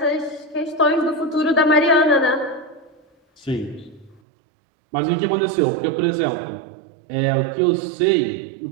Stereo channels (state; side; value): drops out; left; at 4.2 s